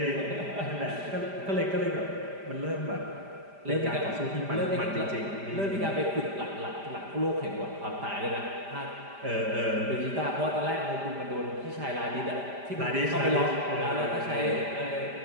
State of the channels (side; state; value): left; late; 5.0 ms